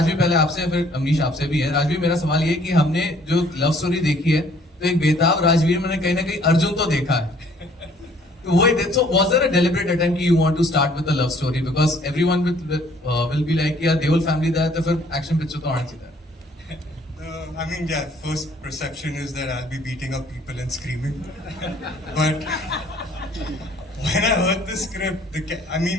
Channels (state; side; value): normal; both; correlation 0.59